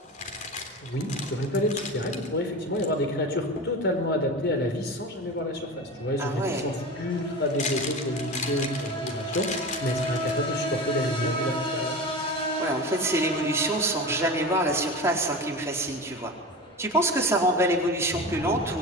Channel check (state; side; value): normal; both; correlation 0.28